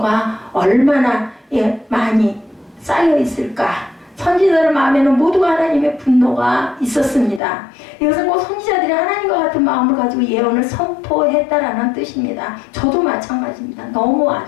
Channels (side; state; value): right; drops out; at 7.4 s